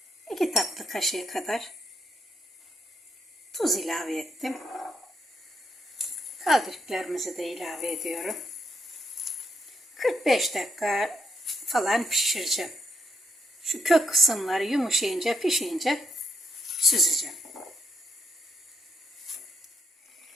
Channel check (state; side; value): normal; both; correlation 0.77